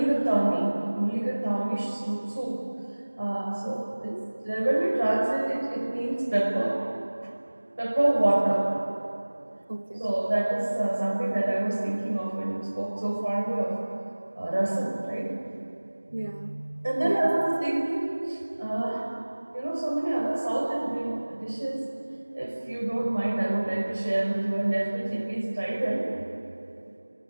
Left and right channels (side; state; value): both; inverted; correlation -1.00